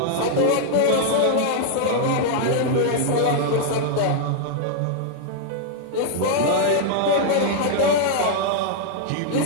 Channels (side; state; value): both; different; correlation -0.01